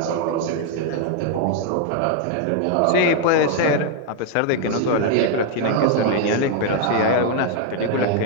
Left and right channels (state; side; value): different; both; correlation 0.00